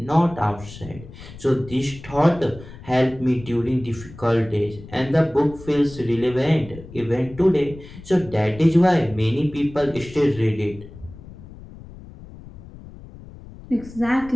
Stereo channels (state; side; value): noise; left; rumble, 17 dB below the sound